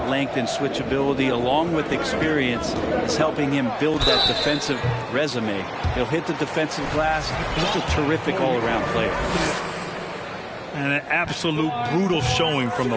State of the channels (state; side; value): identical; both; correlation 1.00